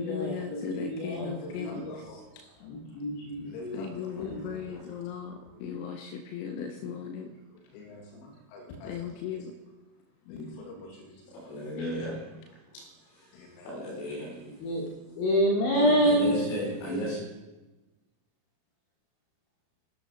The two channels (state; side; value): late; right; 32 ms